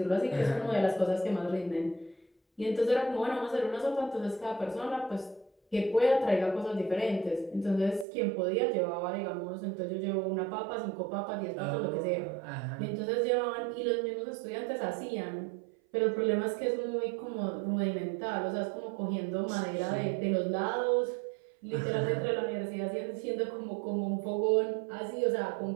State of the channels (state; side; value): drops out; left; at 8.1 s